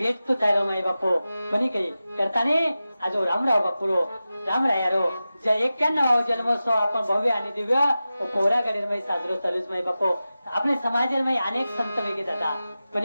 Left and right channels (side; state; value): both; inverted; correlation -0.94